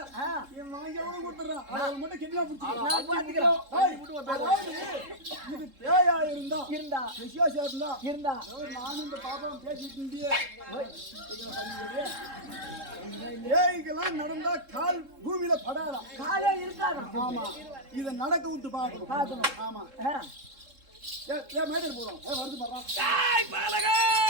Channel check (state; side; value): late; left; 3.7 ms